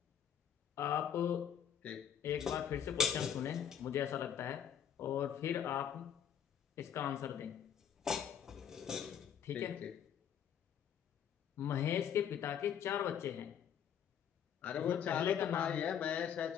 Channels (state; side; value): quieter; right; 8.8 dB